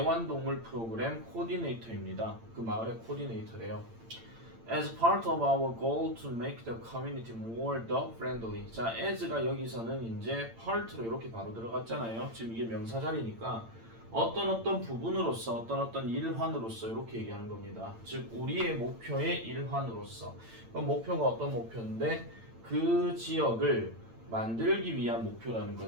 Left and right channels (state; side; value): late; left; 8.8 ms